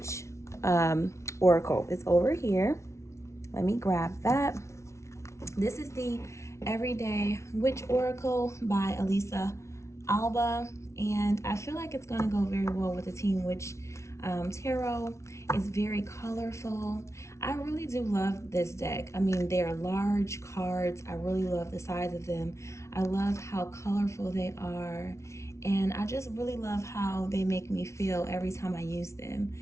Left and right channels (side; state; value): right; late; 0.13 ms